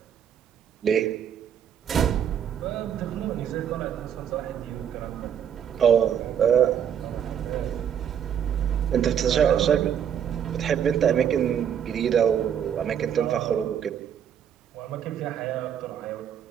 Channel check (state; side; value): quieter; left; 8.7 dB